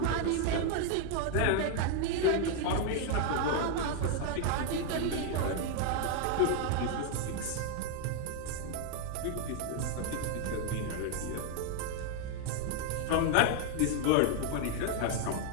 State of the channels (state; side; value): different; both; correlation 0.00